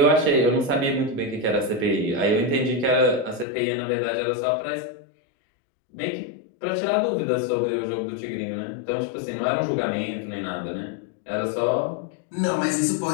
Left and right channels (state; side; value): drops out; right; at 3.5 s